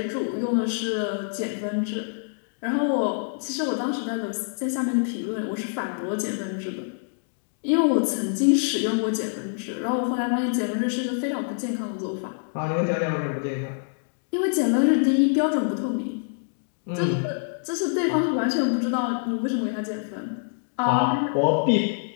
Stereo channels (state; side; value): silent; right; digital silence